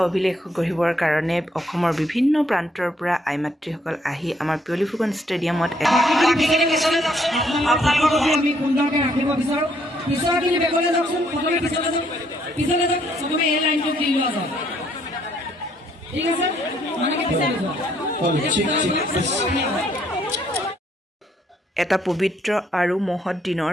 অভিলেখ গঢ়িবৰ কাৰণে অসমৰ বিভিন্ন প্ৰান্তৰ পৰা আইমাতৃসকল আহি আমাৰ পিয়লি ফুকন ষ্টেডিয়ামত আমি সুন্দৰকৈ ৰাখিব বিচাৰো পিছৰখিনি বেগলৈ যাওকচোন প্ৰথমে পিছলৈ যাওক চবকে এই লাইনটো দি লোৱা যাওক ঠিক আছে মানে এটা পবিত্ৰ আৰু মহৎ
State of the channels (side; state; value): both; normal; correlation 0.69